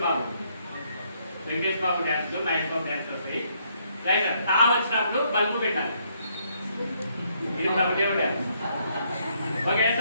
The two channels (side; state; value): both; inverted; correlation -0.72